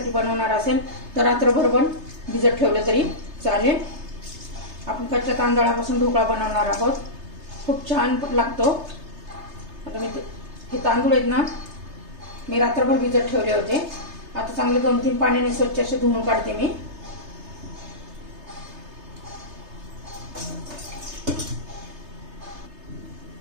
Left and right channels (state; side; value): late; left; 3.3 ms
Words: बनवणार असेल तर रात्रभर पण भिजत ठेवलं तरी चालेल। आपण कच्च्या तांदळापासून ढोकळा बनवणार आहोत, खूप छान लागतो। आता मी हे तांदूळ आहेत ना, मी रात्रभर भिजत ठेवले होते। आता चांगले 2-3 पाण्याने स्वच्छ असे धुवून काढते मी।